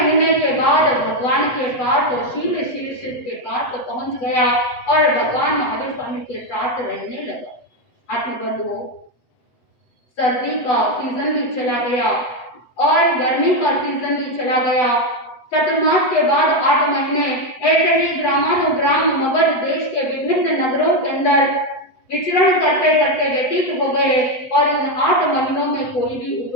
के बाद भगवान के पास वो शील शीर्ष के पास पहुंच गया और भगवान महावीर स्वामी के साथ रहने लगा। आत्मबंधुओं, सर्दी का सीजन भी चला गया और गर्मी का सीजन भी चला गया। चतुर्मास के बाद 8 महीने ऐसे ही ग्रामानुग्राम मगध देश के विभिन्न नगरों के अंदर विचरण करते करते व्यतीत हो गए और इन 8 महीनों में कोई भी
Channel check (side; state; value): right; late; 8.0 ms